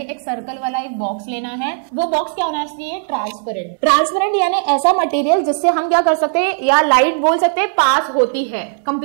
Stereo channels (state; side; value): silent; left; digital silence